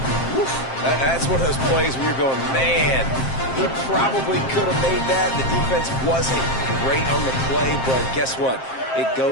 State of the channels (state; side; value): late; right; 7.6 ms